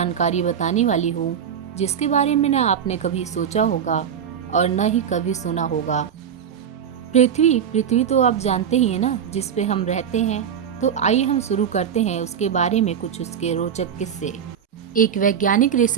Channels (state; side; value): quieter; left; 8.2 dB